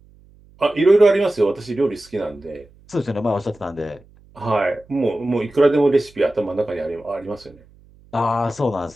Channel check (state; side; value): noise; right; hum, 28 dB below the sound